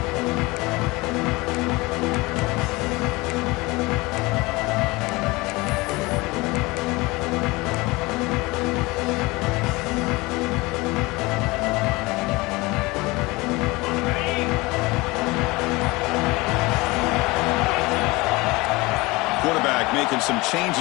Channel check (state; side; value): quieter; right; 22.9 dB